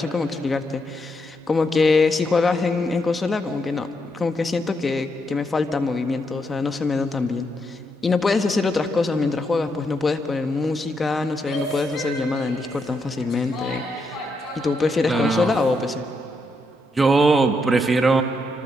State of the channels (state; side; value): normal; both; correlation 0.80